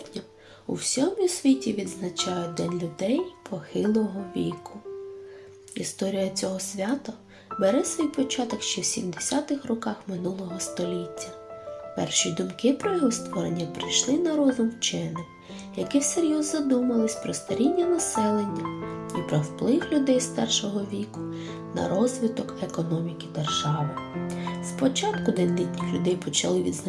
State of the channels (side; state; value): both; identical; correlation 1.00